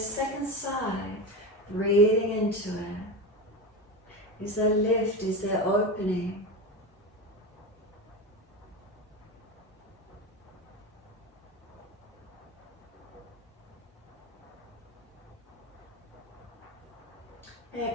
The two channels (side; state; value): both; normal; correlation 0.22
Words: second side? Breathing into it. Is there lift? Is there opening?